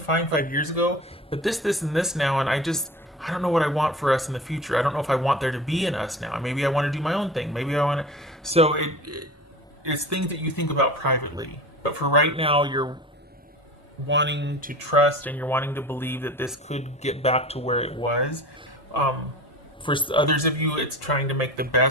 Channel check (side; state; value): both; normal; correlation 0.35